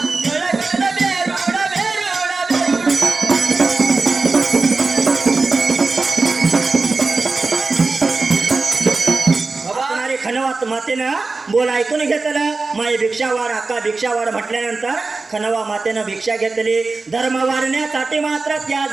असणारे खनवात मातेनं बोल ऐकून घेतलं माय भिक्षावाड हक्का भिक्षावाड म्हटल्यानंतर खनवा मातेनं भिक्षा घेतली धर्म वाढण्यासाठी मात्र त्या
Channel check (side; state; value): left; quieter; 3.8 dB